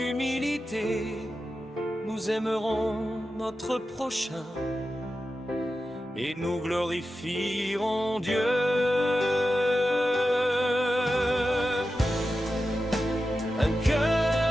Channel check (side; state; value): both; normal; correlation 0.91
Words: nous aimerons notre prochain et nous glorifierons Dieu. Un